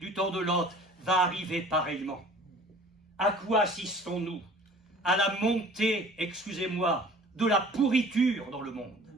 du temps de Lot va arriver pareillement. À quoi assistons-nous? À la montée, excusez-moi, de la pourriture dans le monde.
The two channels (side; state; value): both; normal; correlation 0.48